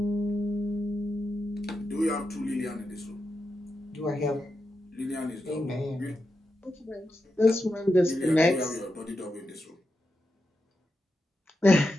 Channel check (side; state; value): both; normal; correlation 0.87